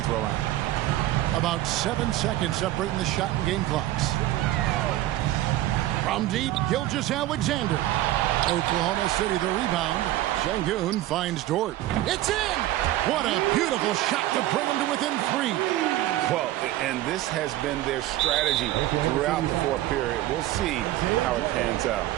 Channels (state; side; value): quieter; left; 15.0 dB